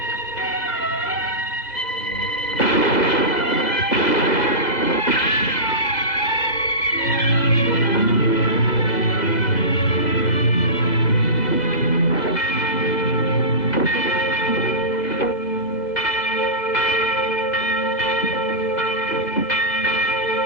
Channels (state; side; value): late; right; 2.0 ms